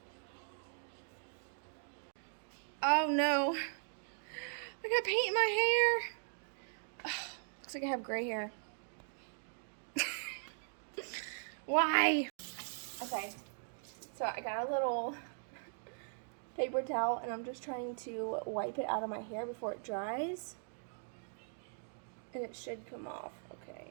Oh no, I got paint in my hair. Ugh, looks like I have gray hair. Why? Okay, so I got a little paper towel and I'm just trying to wipe it out of my hair before it dries. And it should come off, okay.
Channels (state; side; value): silent; left; digital silence